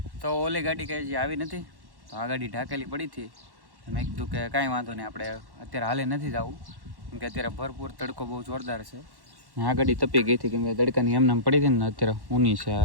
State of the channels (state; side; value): late; left; 1.1 ms